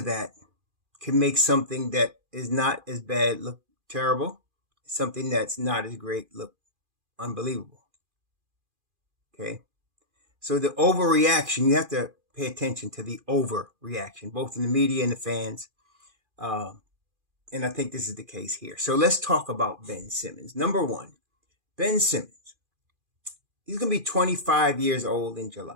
that, can make something that is not as bad look terrible, something that's not as great look unbelievable. Okay? So the overreaction, you have to pay attention to the overreaction, both in the media and the fans. And I think this is the case here. So let's talk about Ben Simmons. Number one, Ben Simmons. He's going to be 25 years old in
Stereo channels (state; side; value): late; left; 2.4 ms